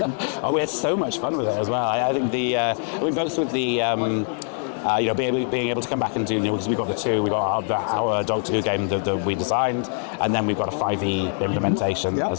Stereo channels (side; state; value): right; silent; 59 dB below the other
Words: Oh, we had so much fun with it as well. I think we both with the being able to come back and do, because we've got the two, we got our Doctor Who game that we designed, and then we've got a 5e implementation